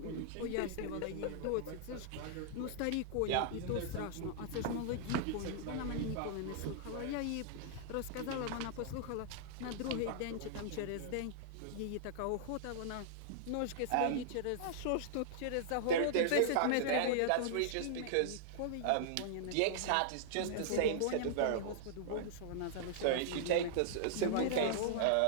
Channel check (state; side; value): different; both; correlation -0.01